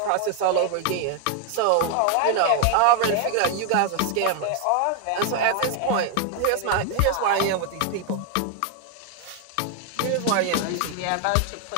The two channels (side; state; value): both; different; correlation 0.00